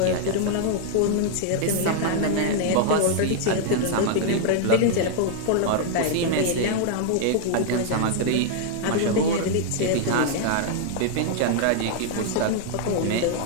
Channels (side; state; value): both; different; correlation -0.01